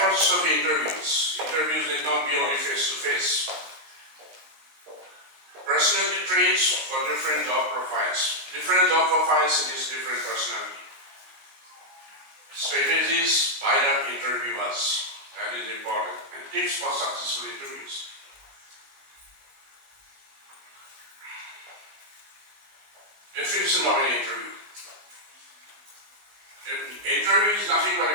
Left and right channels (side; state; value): left; late; 19 ms